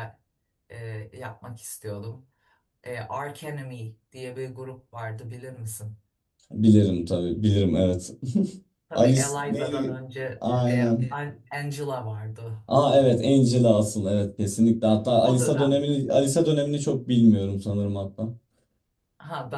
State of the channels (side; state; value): both; identical; correlation 1.00